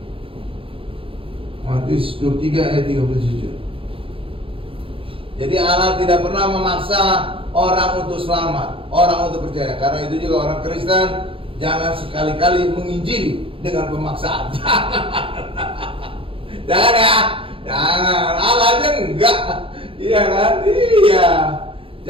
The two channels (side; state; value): left; late; 0.26 ms